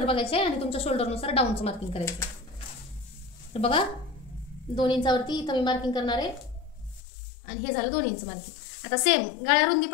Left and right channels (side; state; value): right; drops out; at 7.0 s